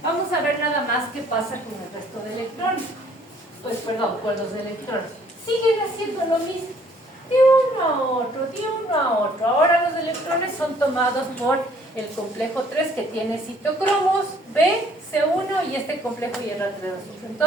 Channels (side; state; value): both; normal; correlation 0.60